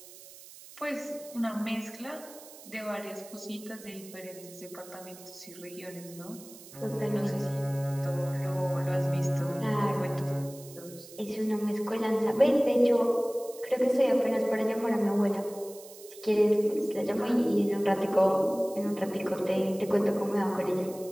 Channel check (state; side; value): noise; right; hiss, 18 dB below the sound